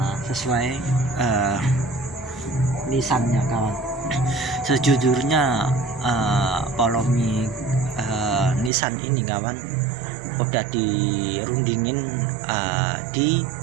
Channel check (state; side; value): drops out; left; at 8.7 s